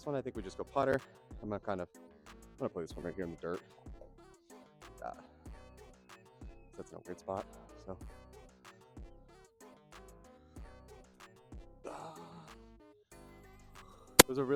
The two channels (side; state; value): both; identical; correlation 1.00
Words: one, I think we just go putter. I'm gonna play this one right here in the dirt. Like that. That's in a weird spot. So it was a